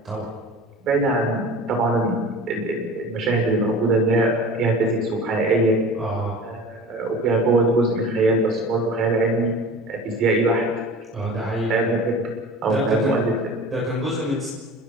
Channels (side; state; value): both; normal; correlation 0.38